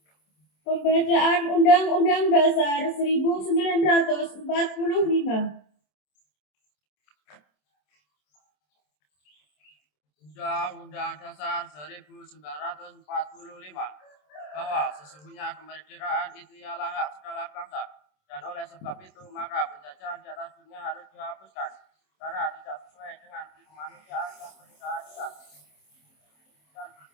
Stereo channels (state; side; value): late; right; 27 ms